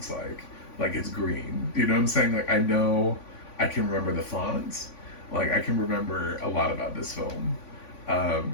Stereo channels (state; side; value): late; right; 3.5 ms